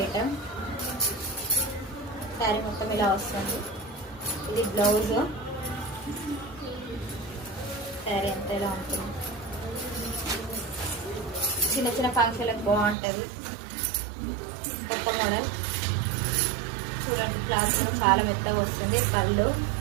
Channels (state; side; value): drops out; left; at 13.0 s